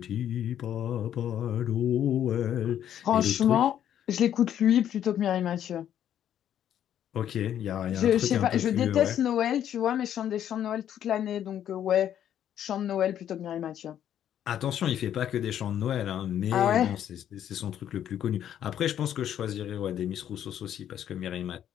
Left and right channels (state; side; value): quieter; right; 10.3 dB